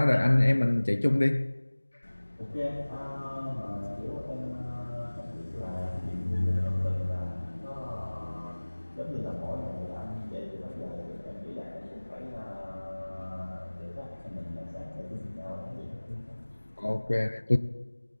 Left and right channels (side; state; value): both; inverted; correlation -1.00